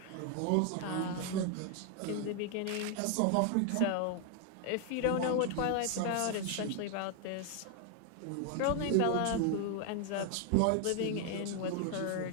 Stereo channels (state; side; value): different; both; correlation 0.00